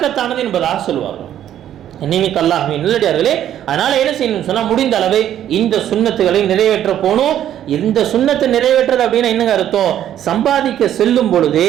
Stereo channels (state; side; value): quieter; left; 11.0 dB